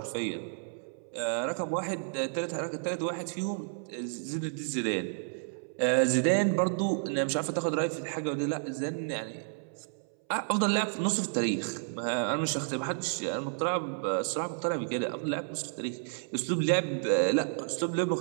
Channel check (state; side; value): silent; left; 57 dB below the other